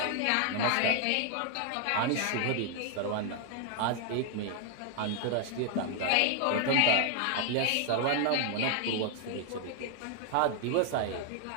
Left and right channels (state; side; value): different; both; correlation 0.00